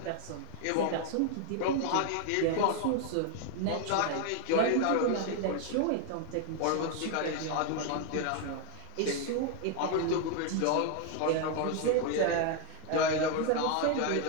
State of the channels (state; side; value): different; both; correlation 0.01